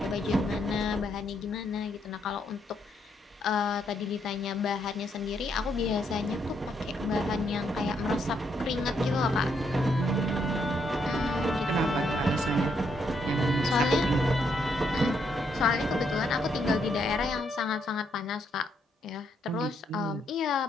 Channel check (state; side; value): normal; both; correlation 0.75